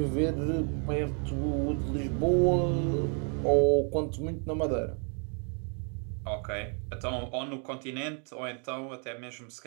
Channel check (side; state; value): left; quieter; 39.7 dB